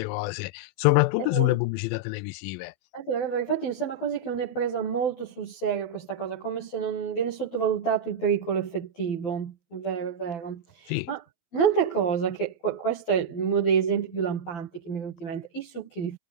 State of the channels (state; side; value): late; right; 12 ms